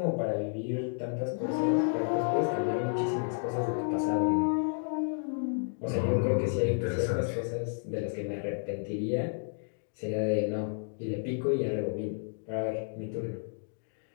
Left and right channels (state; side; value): silent; right; digital silence